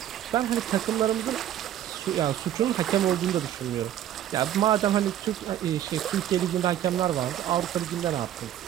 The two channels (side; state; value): left; quieter; 11.5 dB